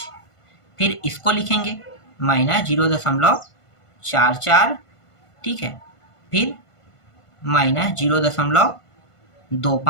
फिर इसको लिखेंगे माइनस 0.44, ठीक है, फिर माइनस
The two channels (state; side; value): late; right; 1.5 ms